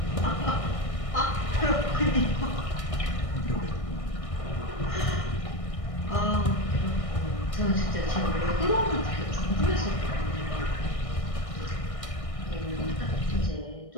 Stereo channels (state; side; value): late; right; 1.6 ms